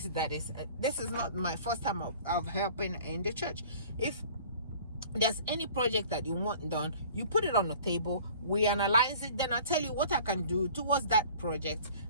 that is, this is not my first time of helping in the church. If there's any project that you want done, you put it on the table, we analyze it, then I'll tell you what I can do towards that project,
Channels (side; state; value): both; inverted; correlation -0.48